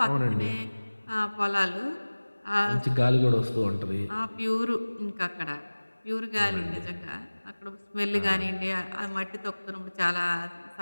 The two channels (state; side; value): inverted; both; correlation -1.00